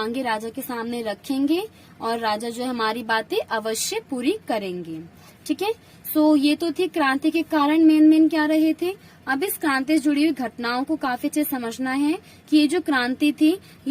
राजा के सामने रखेंगे और राजा जो है हमारी बातें अवश्य पूरी करेंगे। ठीक है, सो ये तो थी क्रांति के कारण मेन क्या रहे थे। अब इस क्रांति से जुड़ी हुई घटनाओं को काफी अच्छे समझना है कि ये जो क्रांति थी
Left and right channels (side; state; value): both; identical; correlation 1.00